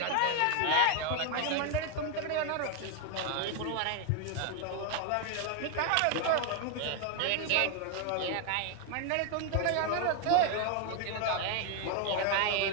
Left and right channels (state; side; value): different; both; correlation 0.00